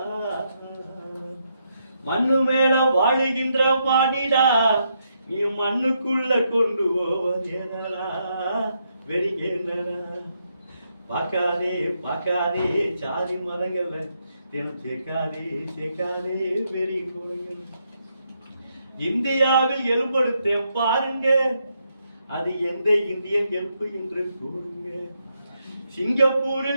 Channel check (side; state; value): both; inverted; correlation -0.79